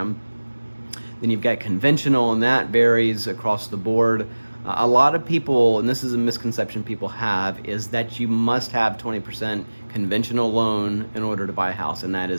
Then you've got conventional, and that varies across the board. A lot of people, and this is a misconception people have, is that you must have 20% conventional loan in order to buy a house, and that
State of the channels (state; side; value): inverted; both; correlation -1.00